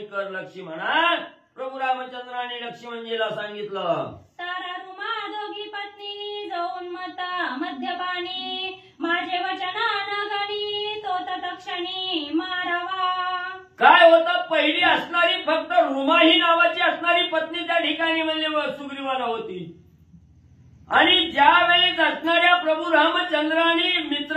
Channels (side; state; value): both; identical; correlation 1.00